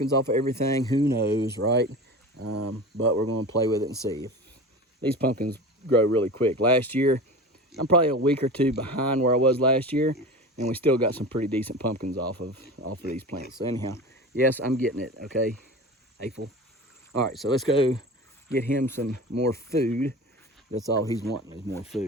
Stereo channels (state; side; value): normal; both; correlation 0.32